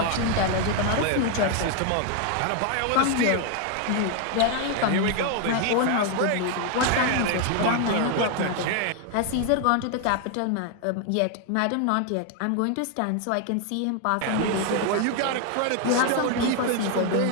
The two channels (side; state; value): both; different; correlation 0.01